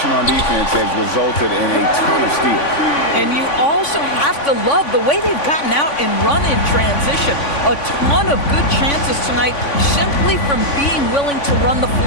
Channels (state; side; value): late; right; 3.5 ms